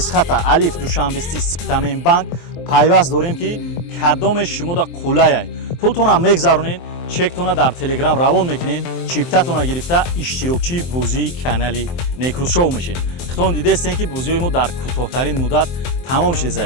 алиф душанбести Спитамен банк пайваст дорем ки кадоме шумо да қулаяй. пултона мегзаронед, чектона дар телеграм равон мекунед, чиптатона гирифта иштирокчии бозии канали Некрус шоу мешед. хитон дидестен ки бозиҳои мо дар кӯтоҳтарин муддат тамом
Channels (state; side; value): late; right; 23 ms